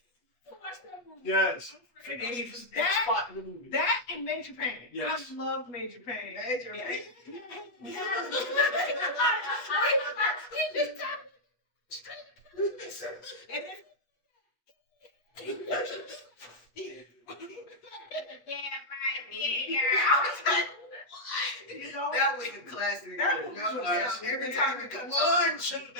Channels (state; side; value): late; right; 8.3 ms